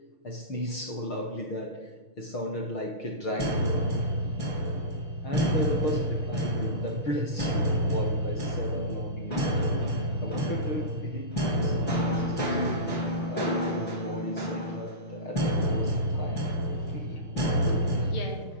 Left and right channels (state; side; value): late; right; 6.4 ms